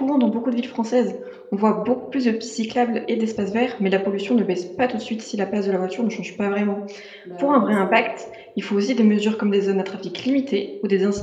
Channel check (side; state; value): both; identical; correlation 1.00